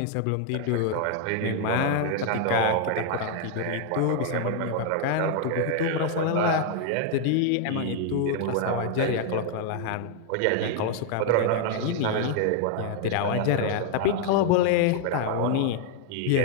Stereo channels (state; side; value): different; both; correlation 0.00